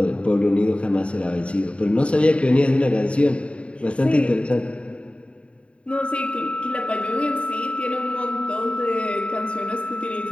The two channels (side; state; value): right; late; 0.061 ms